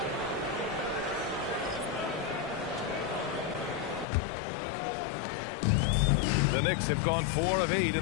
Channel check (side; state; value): right; drops out; at 4.0 s